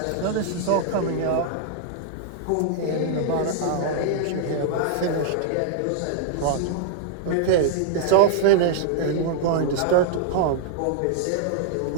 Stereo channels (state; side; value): different; both; correlation -0.01